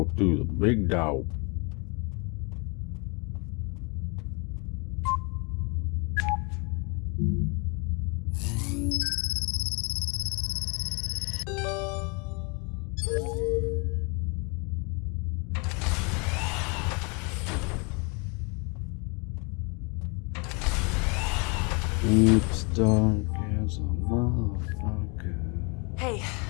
through the big door. It's dark as a motherfucker. Hey,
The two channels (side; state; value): right; quieter; 31.6 dB